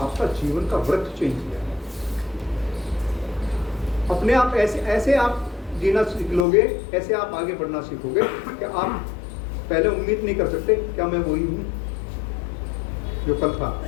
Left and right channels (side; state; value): right; drops out; at 6.5 s